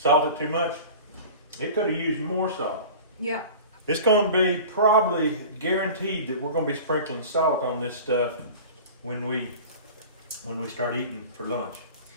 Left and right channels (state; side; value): inverted; both; correlation -0.38